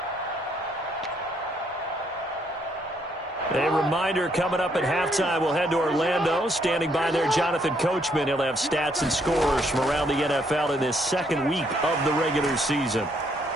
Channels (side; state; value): both; normal; correlation 0.71